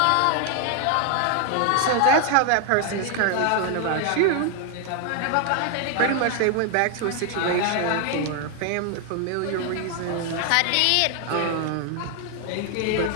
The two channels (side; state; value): both; different; correlation 0.00